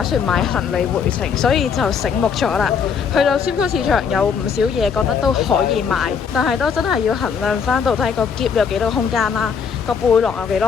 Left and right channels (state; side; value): quieter; right; 6.4 dB